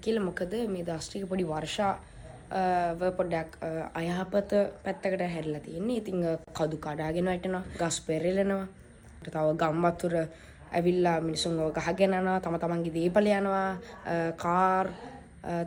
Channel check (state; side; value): identical; both; correlation 1.00